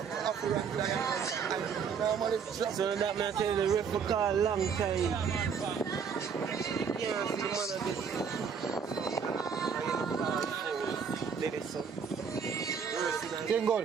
So that man tell the ref for call long time. Yeah, the man Game goal.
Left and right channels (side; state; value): left; quieter; 6.4 dB